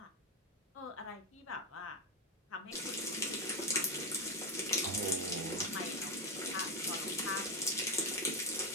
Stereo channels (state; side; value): normal; both; correlation 0.09